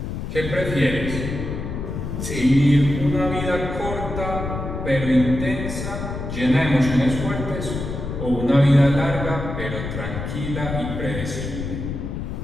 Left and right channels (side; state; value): left; noise; rumble, 5 dB below the sound